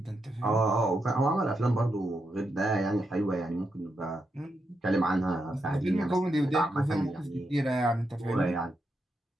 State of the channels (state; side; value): normal; both; correlation 0.84